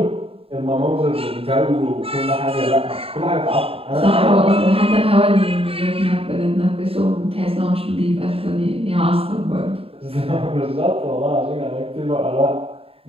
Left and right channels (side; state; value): left; late; 0.27 ms